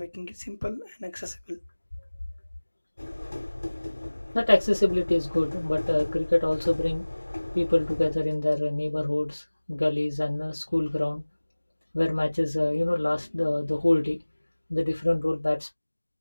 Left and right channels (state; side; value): inverted; both; correlation -1.00